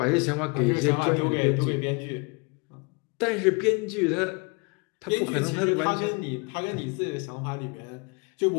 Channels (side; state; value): right; quieter; 31.2 dB